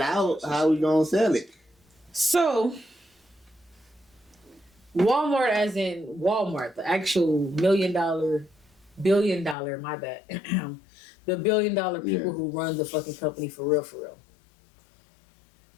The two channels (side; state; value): right; drops out; at 9.6 s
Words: out, how we gonna sell it? So, Walmart, as in Walmart, the actual billion dollar, my bad, the $1 billion people who run the fucking company for real.